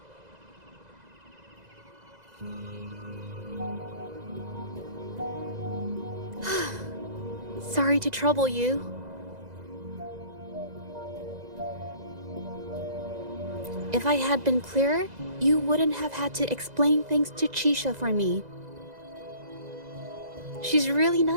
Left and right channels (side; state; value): left; late; 2.0 ms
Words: Sorry to trouble you. If I had been clearer, you wouldn't have had to explain things to Chisha for me. She's really